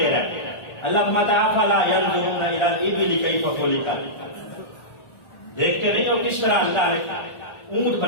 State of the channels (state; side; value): late; right; 1.4 ms